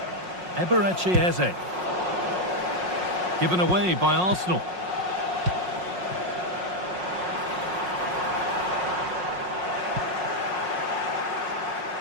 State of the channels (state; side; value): late; left; 5.5 ms